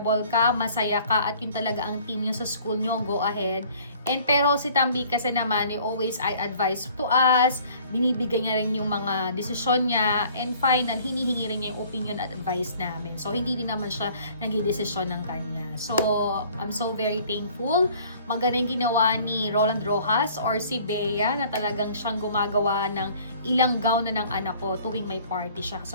ka, masaya ka, at yun talaga ang team nyo sa school nyo, go ahead. And pero si Tambi kasi naman, always I advise to us, binibigay niya rin yung mga desisyon niya, and final, hinihingi rin niya yung opinion at advice namin. So, hindi din naman siya nagdidesisyon ng kanya. So, I'm so very thankful. Maganda yung ginawa ni Roland Rojas or si Bea na talagang siyang gumagawa ng ilang gown na ng anak ko tuwing may party siya.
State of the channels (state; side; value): inverted; both; correlation -0.54